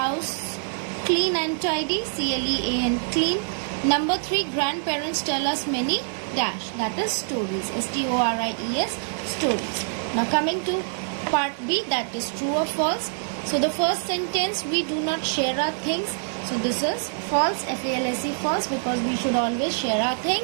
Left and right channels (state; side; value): silent; left; 62 dB below the other